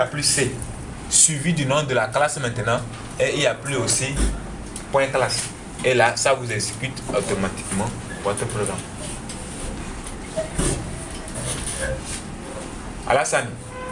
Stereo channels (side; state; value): both; identical; correlation 1.00